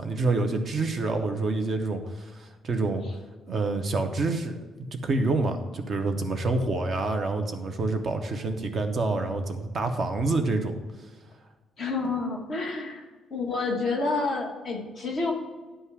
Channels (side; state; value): both; normal; correlation 0.72